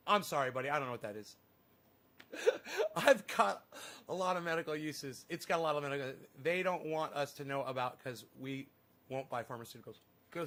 I'm sorry, buddy. I don't know what that is. I've got a lot of medical uses. It's got a lot of medical. They don't want us to know about because we won't buy pharmaceuticals.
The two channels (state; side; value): identical; both; correlation 1.00